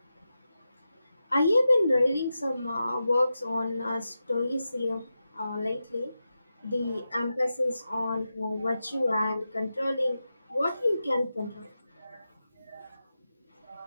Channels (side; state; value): both; inverted; correlation -0.91